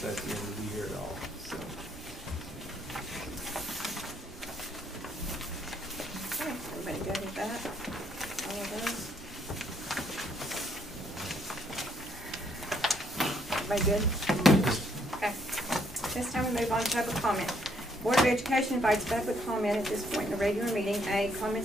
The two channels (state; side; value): normal; both; correlation 0.69